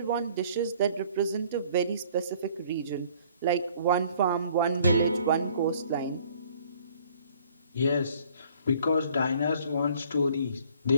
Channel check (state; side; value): inverted; both; correlation -0.57